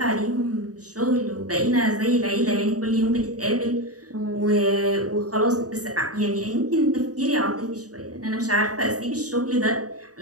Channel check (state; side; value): late; left; 0.67 ms